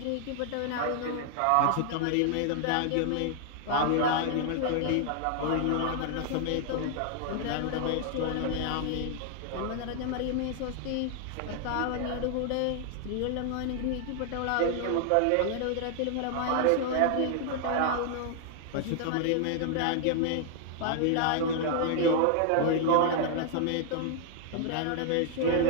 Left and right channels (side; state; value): both; different; correlation 0.00